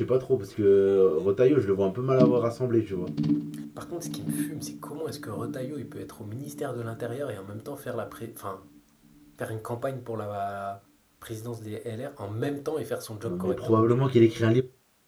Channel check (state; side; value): identical; both; correlation 1.00